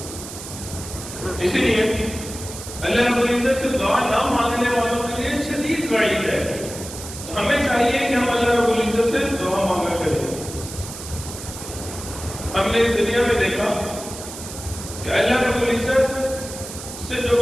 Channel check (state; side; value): noise; right; hiss, 11 dB below the sound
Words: اسی لیے اللہ رب العزت سے دعا نہ مانگنے والوں کے لیے شدید وعید ہے. تو ہمیں چاہیے کہ ہم اللہ رب العزت سے دعا مانگا کریں. ہم نے اس دنیا میں دیکھا کہ اللہ رب العزت سے جو